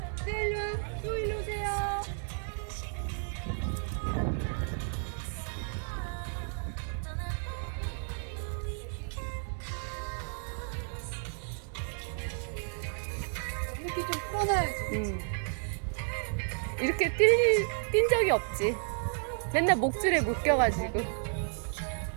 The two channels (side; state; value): left; silent; 56 dB below the other